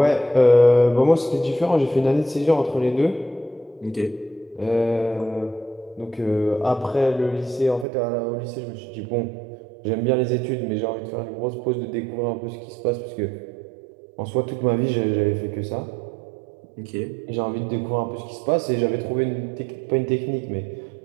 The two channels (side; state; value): left; drops out; at 7.9 s